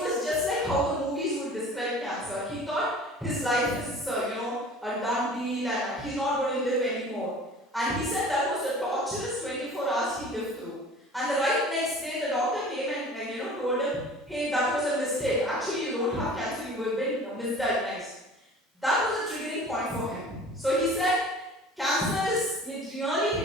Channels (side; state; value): both; normal; correlation 0.44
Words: just like how the movies would describe cancer. He thought his life is, a done deal and he's not going to live anymore. And he said that was a torturous 24 hours he lived through. And the right next day, the doctor came and told him, hey, that was a mistake. Actually, you don't have cancer, you have been misdiagnosed. That was a triggering point for him. So he said, it really